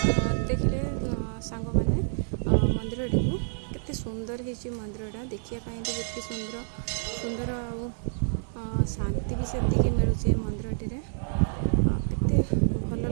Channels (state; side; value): silent; left; 59 dB below the other